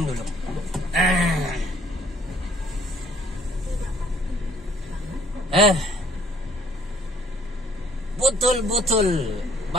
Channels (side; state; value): both; normal; correlation 0.60